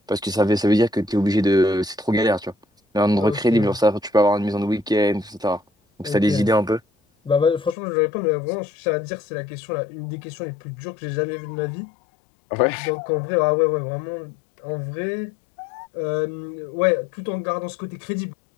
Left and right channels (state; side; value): drops out; right; at 7.8 s